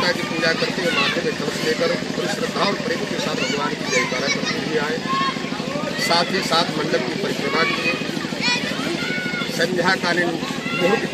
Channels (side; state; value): both; identical; correlation 1.00